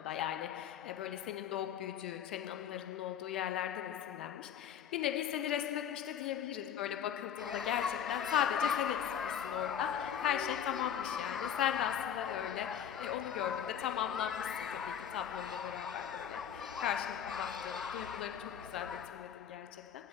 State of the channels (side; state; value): right; quieter; 9.1 dB